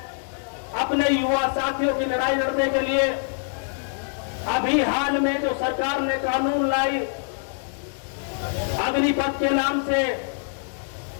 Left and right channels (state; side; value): silent; right; digital silence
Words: अपने युवा साथियों की लड़ाई लड़ने के लिए, अभी हाल में जो सरकार ने कानून लाई अग्निपथ के नाम से,